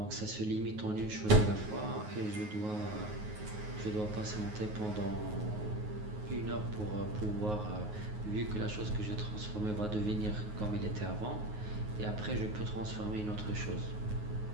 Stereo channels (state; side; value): late; left; 9.5 ms